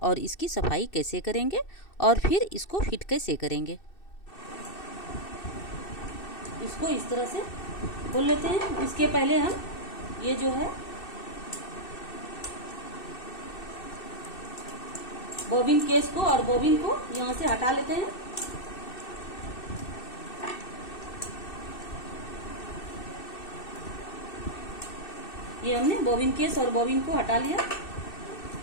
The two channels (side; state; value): right; late; 2.6 ms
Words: और इसकी सफाई कैसे करेंगे और फिर इसको फिट कैसे करेंगे। इसको इस तरह से खोल लेते हैं। इसके पहले हम ये जो है बॉबिन केस को और बॉबिन को यहाँ से हटा लेते हैं। ये हमने बॉबिन केस और बॉबिन को हटा लिया।